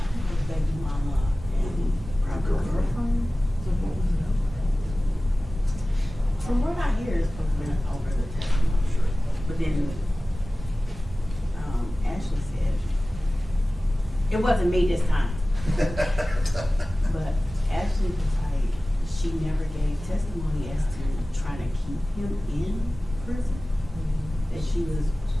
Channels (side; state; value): both; normal; correlation 0.97